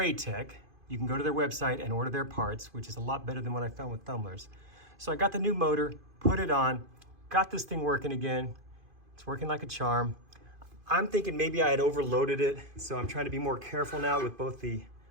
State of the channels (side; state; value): left; late; 2.5 ms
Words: You can go to their website and order their parts, which is a lot better than what I found with Thumblers. So I got the new motor, put it on, got this thing working again. It's working like a charm. I'm thinking maybe I had overloaded it, so I'm trying to be more careful now with both the